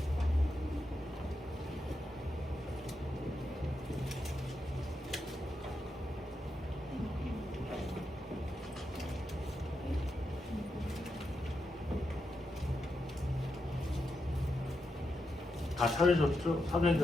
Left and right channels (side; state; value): both; normal; correlation 0.85